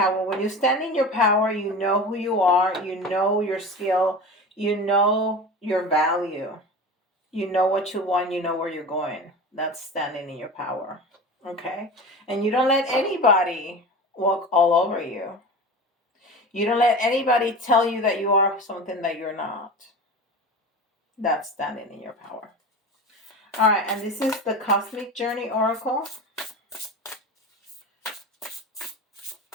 When you stand in your power, you know who you are. You know your skill. You know your value. You know what you want. You know where you're going. That's standing in your power. Okay? And you don't let anybody walk all over you. You don't let anybody tell you that you are something that you're not. That's standing in your power. All right, and this is the Cosmic Journey Oracle.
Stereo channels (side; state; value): both; normal; correlation 0.31